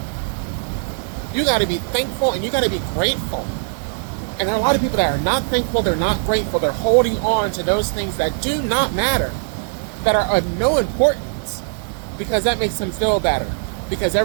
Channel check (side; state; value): left; silent; digital silence